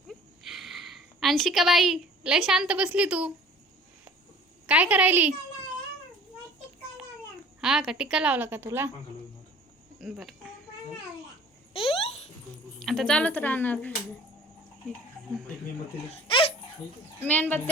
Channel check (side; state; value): both; normal; correlation 0.48